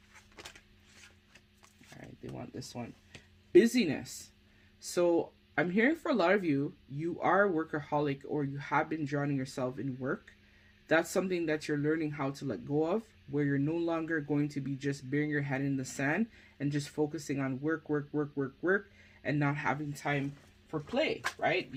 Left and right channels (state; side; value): identical; both; correlation 1.00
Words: They want this one. Busyness. So I'm hearing for a lot of you, you are a workaholic or you have been drowning yourself in work. That's something that you're learning how to let go of, where you're no longer going to be just burying your head in the sand and just focusing on work, and not having time for play, right?